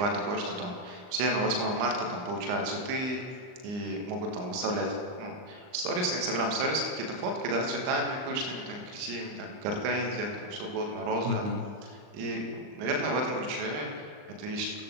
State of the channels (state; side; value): late; left; 39 ms